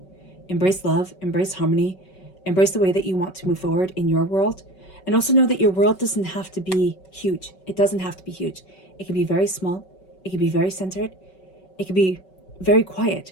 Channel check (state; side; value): late; right; 5.3 ms